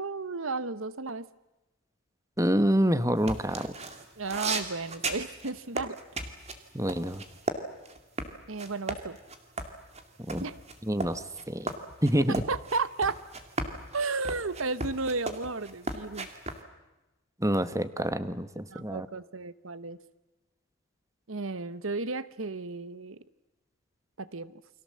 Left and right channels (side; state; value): both; normal; correlation 0.43